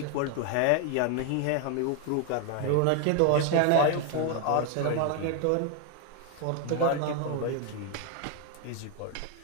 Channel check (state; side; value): different; both; correlation 0.01